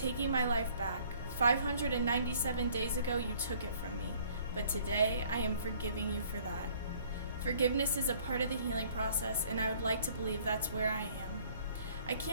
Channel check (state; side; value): inverted; both; correlation -0.58